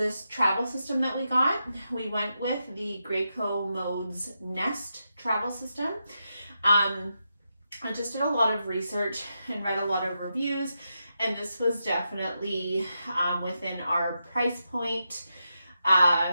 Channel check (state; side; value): inverted; both; correlation -0.86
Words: travel system that we got. We went with the Graco Modes Nest travel system. I just did a lot of research and read a lot of reviews, and this was definitely within our price point.